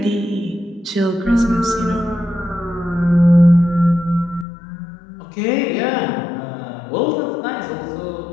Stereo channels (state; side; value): drops out; right; at 4.5 s